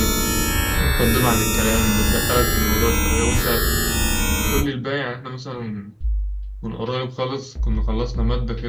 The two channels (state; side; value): identical; both; correlation 1.00